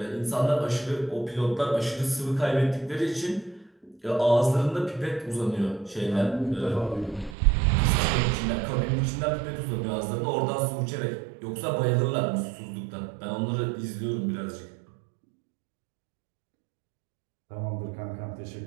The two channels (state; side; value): drops out; left; at 7.4 s